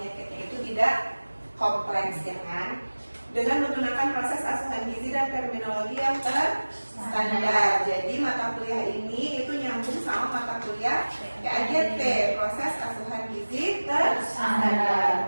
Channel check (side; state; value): both; inverted; correlation -1.00